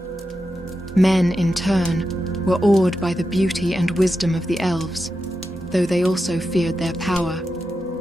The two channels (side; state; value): both; normal; correlation 0.89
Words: Men, in turn, were awed by the beauty and wisdom of the elves, though they also feared their power.